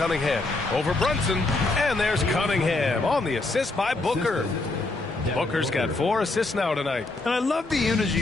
Over Brunson. And there's Cunningham on the assist by Booker. Booker's got 4 assists now tonight. And I love the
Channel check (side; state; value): right; quieter; 3.1 dB